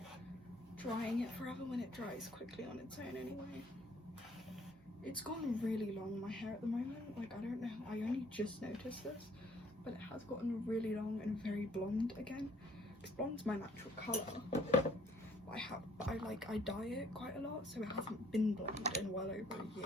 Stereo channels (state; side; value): normal; both; correlation 0.61